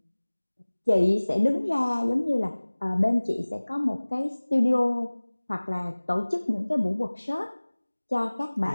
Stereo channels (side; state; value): both; inverted; correlation -1.00